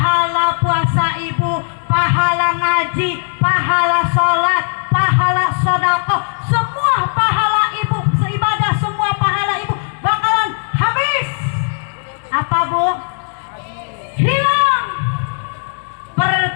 puasa ibu, pahala ngaji, pahala sholat, pahala sodakoh, semua pahala ibu, seibadah semua pahala ibu bakalan habis. Apa bu? Hilang.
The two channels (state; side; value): silent; right; digital silence